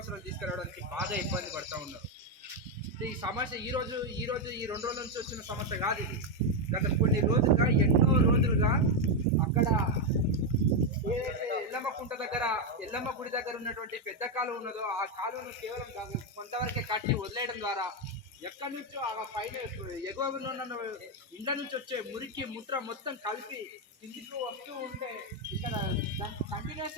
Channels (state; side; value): normal; both; correlation 0.05